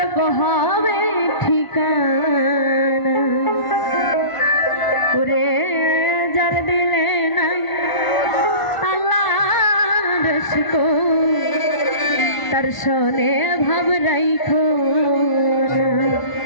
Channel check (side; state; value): right; late; 1.5 ms